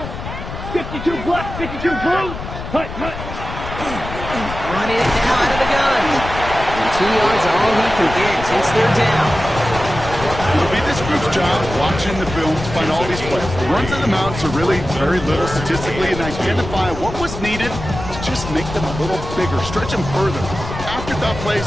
52 black, 52 blue. Hut, hut. Running it now out of the gun. And 2 yards all he can get since they're down. It'll be this group's job watching the film to find all these plays. The runs in them out to really very little statistically and identify what was needed to just make them a little bigger, stretch them further. Afterthought plays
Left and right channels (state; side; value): noise; left; rumble, 9 dB below the sound